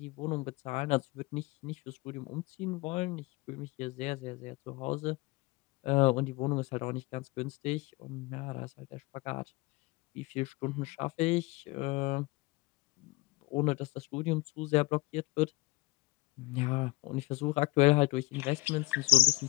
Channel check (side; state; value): right; quieter; 21.3 dB